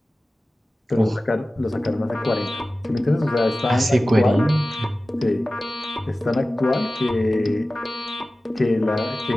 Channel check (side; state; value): both; normal; correlation 0.96